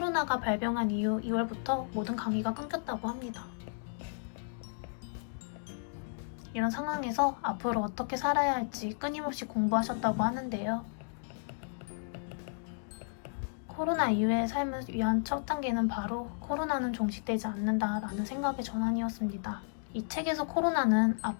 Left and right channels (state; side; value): silent; right; digital silence